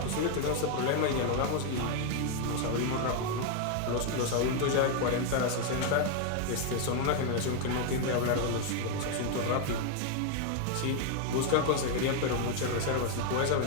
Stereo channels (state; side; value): different; both; correlation 0.01